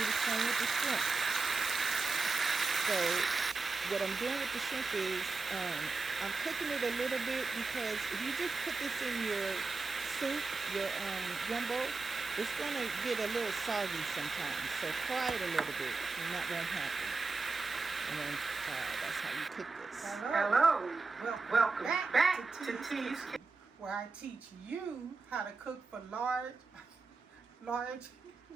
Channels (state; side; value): quieter; left; 4.0 dB